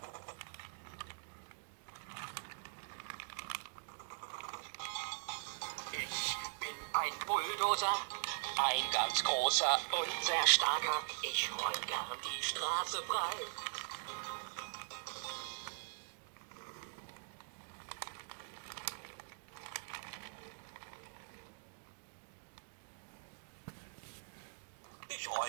Ich bin ein Bulldozer, ein ganz großer und sehr starker. Ich räum gern die Straße frei. Ich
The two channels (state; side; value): silent; left; digital silence